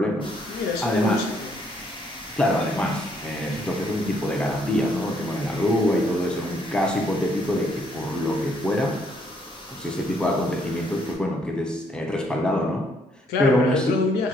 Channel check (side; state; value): both; normal; correlation 0.69